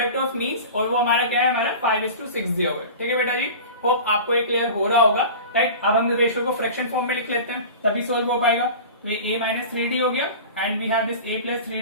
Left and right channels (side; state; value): both; inverted; correlation -0.35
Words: of means, और वो हमारा क्या है, हमारा 5:6 दिया हुआ है, ठीक है बेटा जी। होप आपको ये क्लियर हो रहा होगा, राइट। अब हम रेशियो को फ्रैक्शन फॉर्म में लिख लेते हैं, तभी सोल्व हो पाएगा। तो ये a माइनस 3d हो गया, and we have this a plus